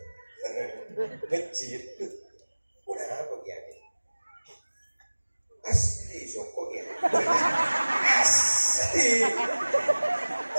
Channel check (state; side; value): inverted; both; correlation -1.00